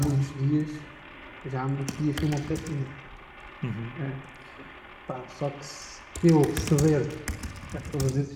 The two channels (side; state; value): both; identical; correlation 1.00